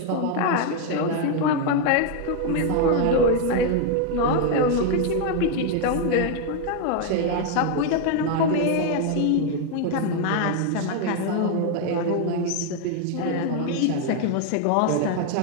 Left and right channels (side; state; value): both; different; correlation 0.01